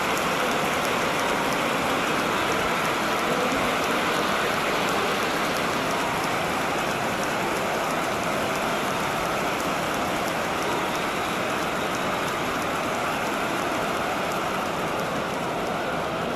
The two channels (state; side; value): identical; both; correlation 1.00